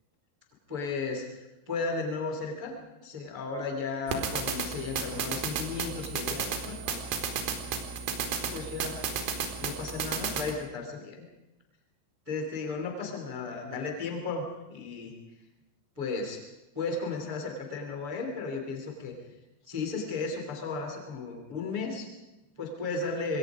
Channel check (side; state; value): left; late; 7.0 ms